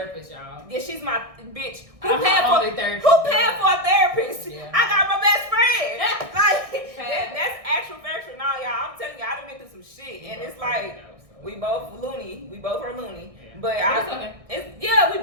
y'all. Yeah, she's my bitch. Who paid for a therapist? Yeah. I got my best friend. Like that's actual factual. Nah, y'all. I'm telling you, I done been through some shit, and it's like we both loony. We both are loony. But we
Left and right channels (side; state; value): left; late; 1.6 ms